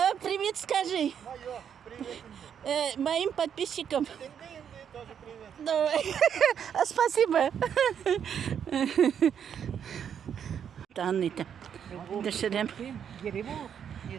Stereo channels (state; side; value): quieter; left; 8.3 dB